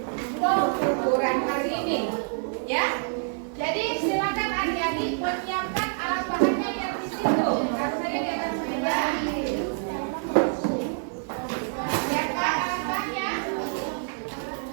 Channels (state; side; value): silent; left; 60 dB below the other